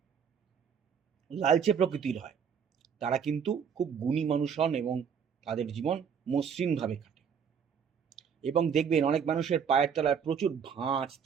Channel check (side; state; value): left; quieter; 7.1 dB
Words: লালচে প্রকৃতির হয়, তারা কিন্তু খুব গুণী মানুষ হন এবং তাদের জীবন মসৃণভাবে কাটে। এবং দেখবেন অনেক মানুষের পায়ের তলায় প্রচুর ভাঁজ